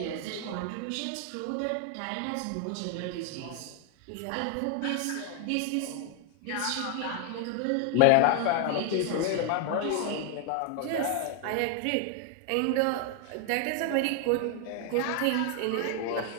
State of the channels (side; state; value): both; different; correlation 0.00